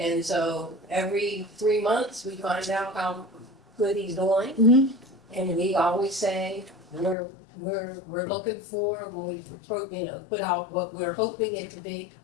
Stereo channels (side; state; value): right; drops out; at 7.2 s